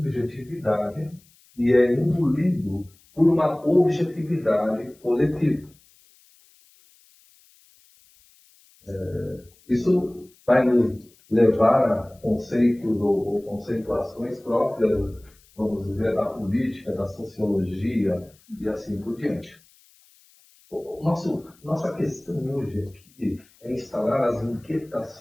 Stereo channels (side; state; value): left; noise; hiss, 30 dB below the sound